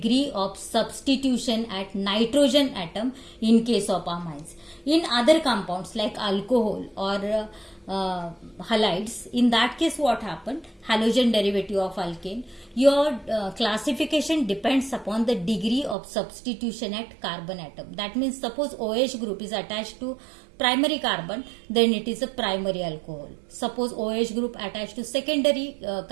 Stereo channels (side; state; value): left; drops out; at 16.0 s